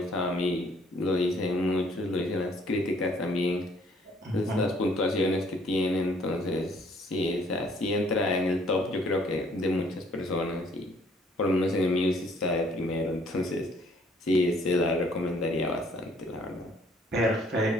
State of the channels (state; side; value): normal; both; correlation 0.61